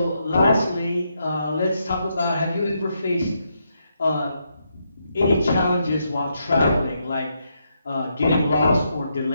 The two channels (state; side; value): inverted; both; correlation -0.80